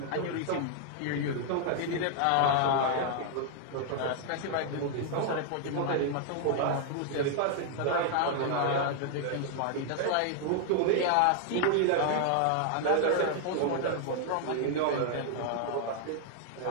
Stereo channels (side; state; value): both; different; correlation 0.00